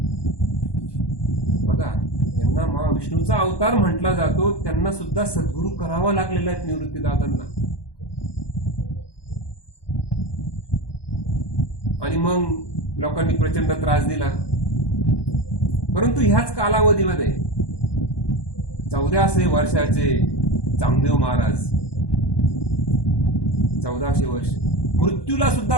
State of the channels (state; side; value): late; right; 1.1 ms